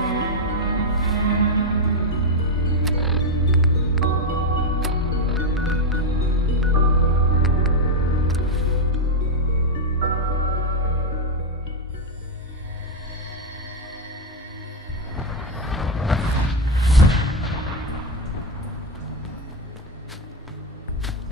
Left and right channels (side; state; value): both; normal; correlation 0.04